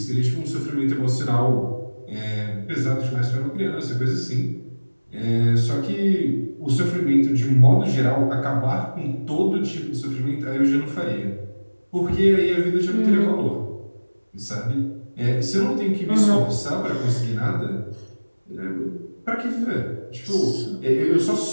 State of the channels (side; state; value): both; inverted; correlation -1.00